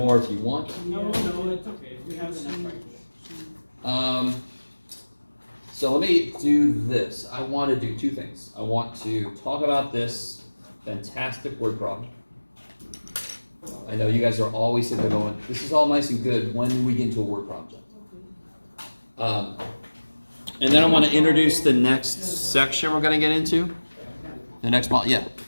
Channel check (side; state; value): both; inverted; correlation -1.00